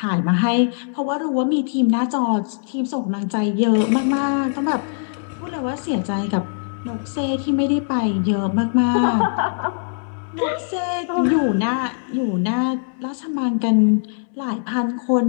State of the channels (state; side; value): silent; right; digital silence